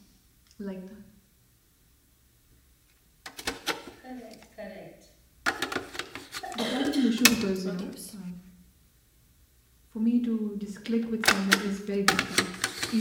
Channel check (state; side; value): identical; both; correlation 1.00